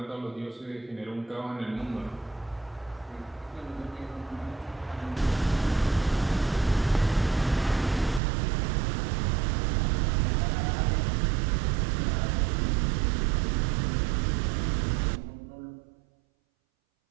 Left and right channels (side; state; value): left; drops out; at 8.2 s